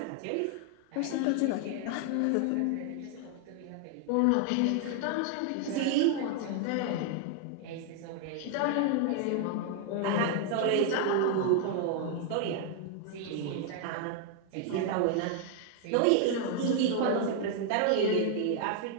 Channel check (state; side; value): different; both; correlation 0.00